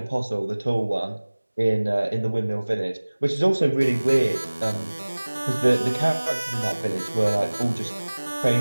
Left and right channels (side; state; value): both; inverted; correlation -1.00